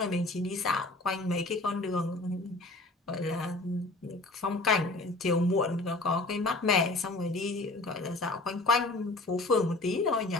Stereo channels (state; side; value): quieter; right; 3.0 dB